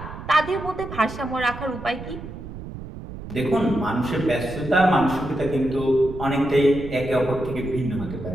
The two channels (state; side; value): noise; right; rumble, 11 dB below the sound